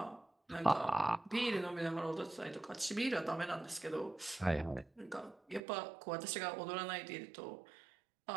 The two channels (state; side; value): drops out; left; at 5.6 s